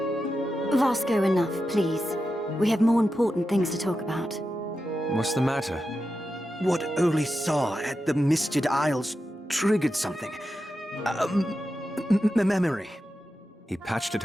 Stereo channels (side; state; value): both; normal; correlation 0.90